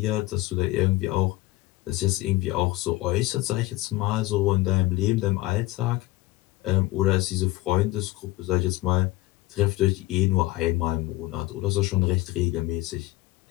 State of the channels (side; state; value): right; quieter; 19.0 dB